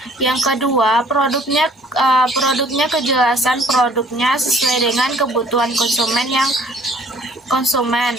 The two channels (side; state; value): both; normal; correlation 0.56